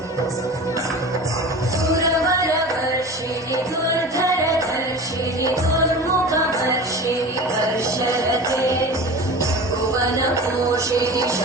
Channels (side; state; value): both; normal; correlation 0.34